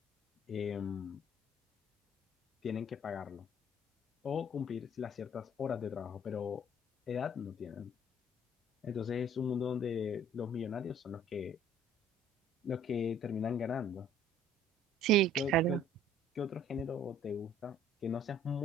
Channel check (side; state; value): both; normal; correlation 0.55